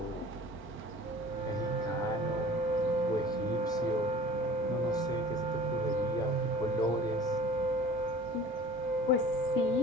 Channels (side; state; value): both; normal; correlation 0.44